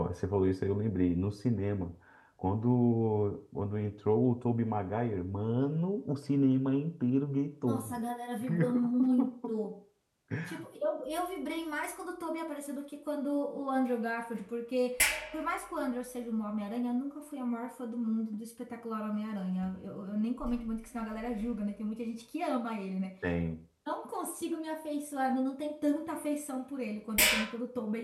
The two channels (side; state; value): both; identical; correlation 1.00